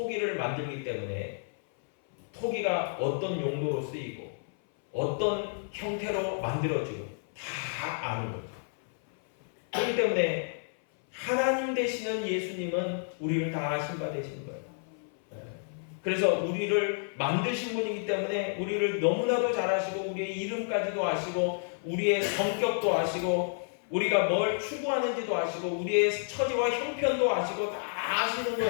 만들기 때문에 토기가 어떤 용도로 쓰이고 어떤 형태로 만들어지고 다 아는 거죠. 그렇기 때문에 하나님 되시는 예수님은 우리를 다 아신 바 되시는 거예요. 그래서 우리를 만드신 분이기 때문에 우리를 너무나도 잘 아시고 우리의 이름까지도 아시고 우리의 성격도 아시고 우리가 뭘 추구하는지도 아시고 우리의 처지와 형편도 아시고 다 아시는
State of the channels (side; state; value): right; silent; 58 dB below the other